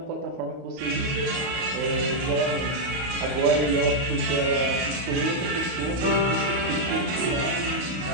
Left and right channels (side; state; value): left; late; 32 ms